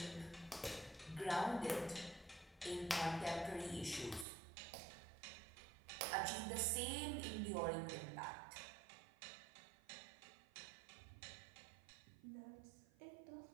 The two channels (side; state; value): left; drops out; at 4.2 s